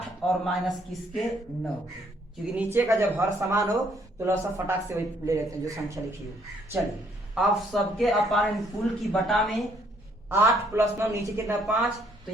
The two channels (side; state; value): both; normal; correlation 0.67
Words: और माइनस किसके 9 के, क्योंकि नीचे का जब हर समान हो तो लसा फटाक से वही ले लेते हैं जो संख्या लिखी हो। चलिए आप सबके अपान कुल की बटा में 8 + 9 नीचे कितना 5, तो